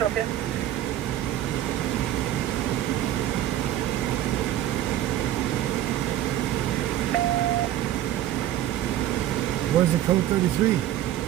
2. Where's the code 33?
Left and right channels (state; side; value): quieter; left; 12.7 dB